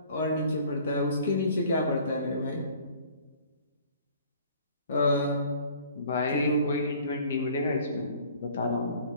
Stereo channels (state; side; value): inverted; both; correlation -0.52